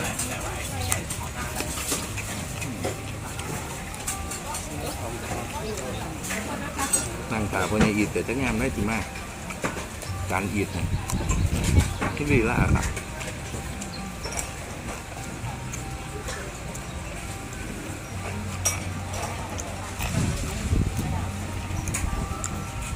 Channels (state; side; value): identical; both; correlation 1.00